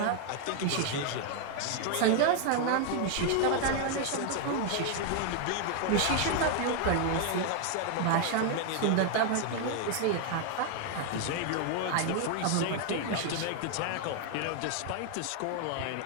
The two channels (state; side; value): different; both; correlation 0.00